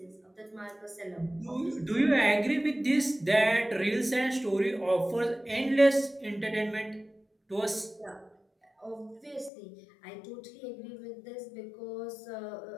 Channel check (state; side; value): drops out; right; at 9.5 s